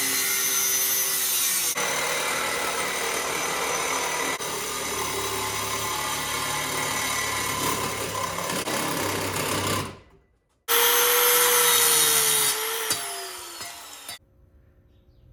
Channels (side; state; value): both; identical; correlation 1.00